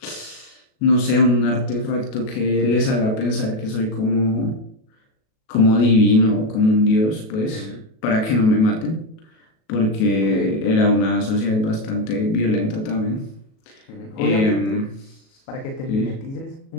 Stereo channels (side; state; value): right; late; 37 ms